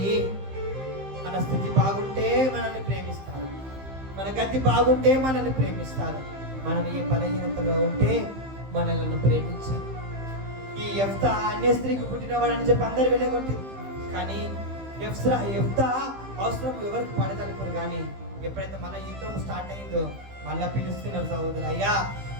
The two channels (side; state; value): left; late; 15 ms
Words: మన స్థితి బాగుంటే మనల్ని ప్రేమిస్తారు, మన గతి బాగుంటే మనల్ని ప్రేమిస్తారు, మనం ఏ బలహీనతలో ఉంటే మనల్ని ప్రేమించారు. ఈ యెఫ్తా అన్య స్త్రీకి పుట్టినవాడని చెప్పి అందరు వెళ్ళగొట్టింది. కానీ యెఫ్తా అవసరం ఎవరికి పడదనుకోరు. కానీ ఎప్పుడైతే మన యుద్ధం స్టార్ట్ అయిందో మళ్ళా పిలుస్తున్నారు, సహోదరు అయ్యా